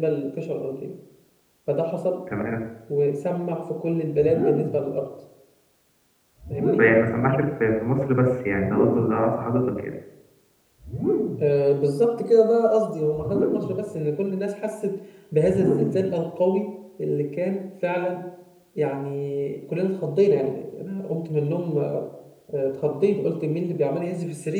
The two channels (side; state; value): both; identical; correlation 1.00